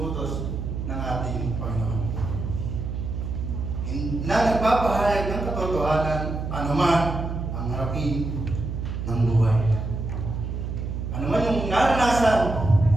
ng ating Panginoon. Na nagpapahayag ng katotohanan anuman ang harapin ng buhay. Anuman yung naranasan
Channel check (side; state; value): right; noise; hum, 4 dB below the sound